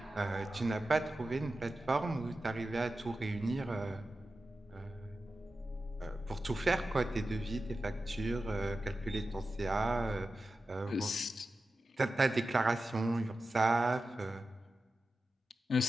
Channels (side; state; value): both; normal; correlation 0.92